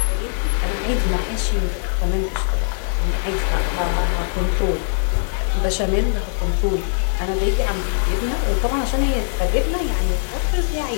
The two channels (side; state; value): right; silent; 65 dB below the other